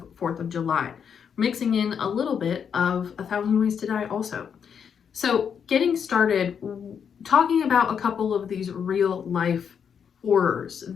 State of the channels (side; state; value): right; quieter; 7.4 dB